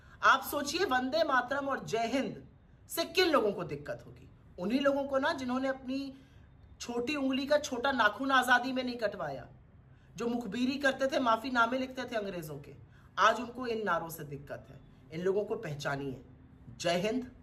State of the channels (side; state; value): both; identical; correlation 1.00